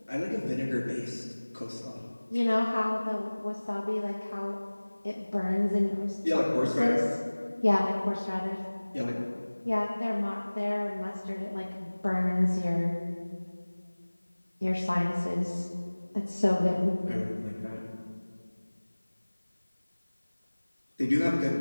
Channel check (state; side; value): inverted; both; correlation -1.00